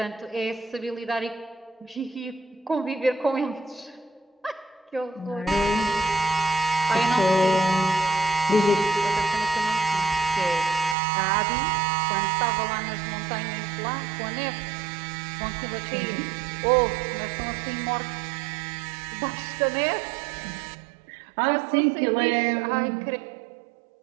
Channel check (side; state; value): left; drops out; at 11.0 s